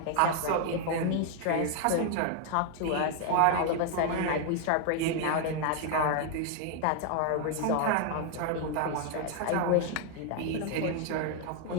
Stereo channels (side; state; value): both; different; correlation 0.00